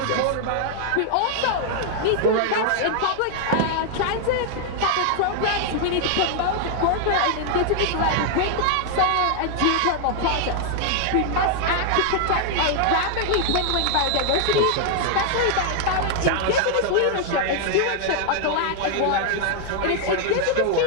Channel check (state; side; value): different; both; correlation 0.00